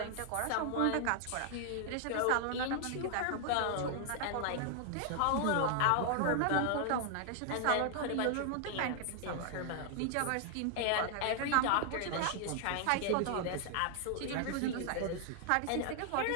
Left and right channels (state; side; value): different; both; correlation 0.00